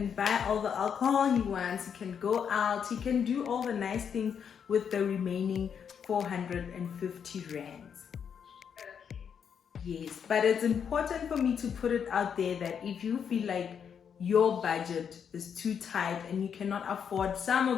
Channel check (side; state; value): right; quieter; 7.5 dB